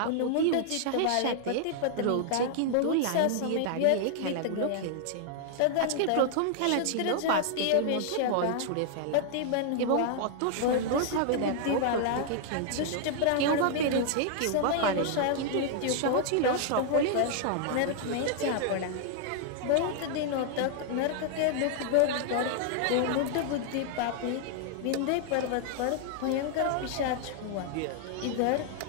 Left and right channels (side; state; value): both; different; correlation 0.00